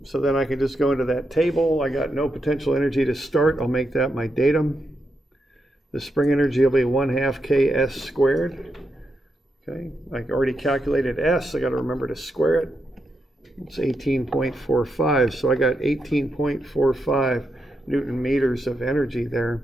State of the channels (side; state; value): both; normal; correlation 0.84